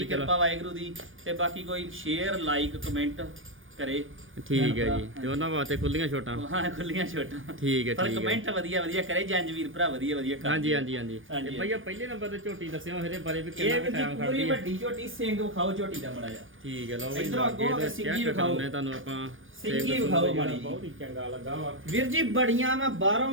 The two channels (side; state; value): left; late; 0.58 ms